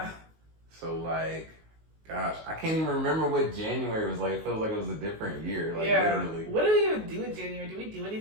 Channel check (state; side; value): late; left; 19 ms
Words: So, gosh, I can't even remember what January was like. It feels like it was a different year, literally. What do we even do in January? Do we do